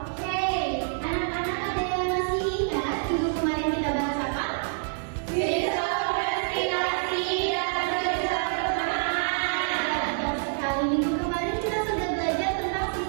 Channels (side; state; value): left; silent; digital silence